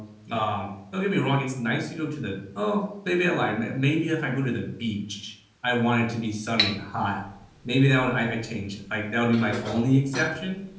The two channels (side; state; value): both; identical; correlation 1.00